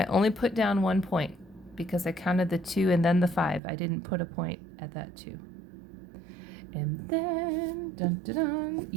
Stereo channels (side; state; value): left; drops out; at 3.6 s